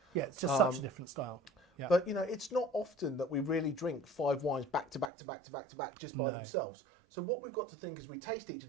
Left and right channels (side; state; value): left; drops out; at 5.1 s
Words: Yeah, it's just such a different style. Yeah. But it's not often that we really drink 5 wines back to back to back to back to back just by themselves. So what we've got to think as we taste each of